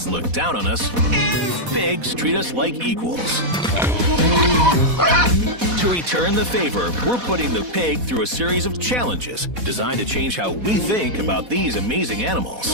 look down on us, and pigs treat us like equals." To return the favor, we're putting the pig through a series of challenges designed to change how we think about these amazing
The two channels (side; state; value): left; late; 4.1 ms